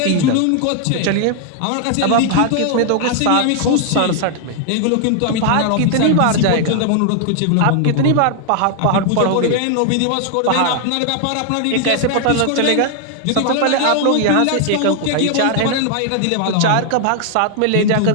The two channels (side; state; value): both; different; correlation 0.00